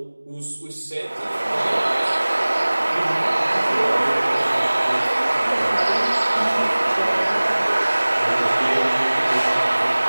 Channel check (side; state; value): both; inverted; correlation -1.00